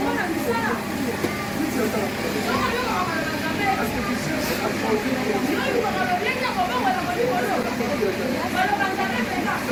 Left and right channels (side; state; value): both; identical; correlation 1.00